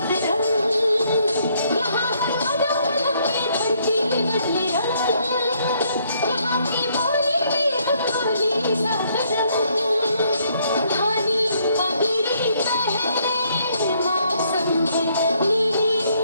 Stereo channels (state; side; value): inverted; both; correlation -0.69